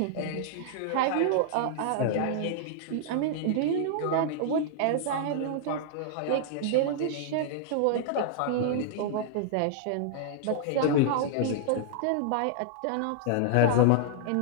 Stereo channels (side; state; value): both; different; correlation -0.01